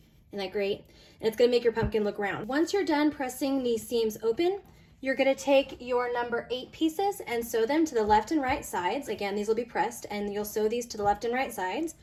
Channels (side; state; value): both; identical; correlation 1.00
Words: Isn't that great? And it's gonna make your pumpkin look round. Once you're done pressing these seams open, you're gonna take your number 8 pieces and sew them to the left and right sides. Again, these will be pressed and you'll sew these to the left and right sides.